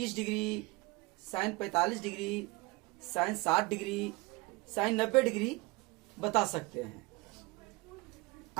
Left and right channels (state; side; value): quieter; left; 24.3 dB